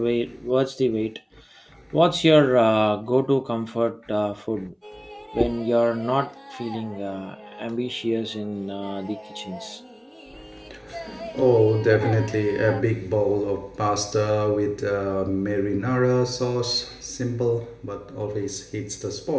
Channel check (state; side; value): identical; both; correlation 1.00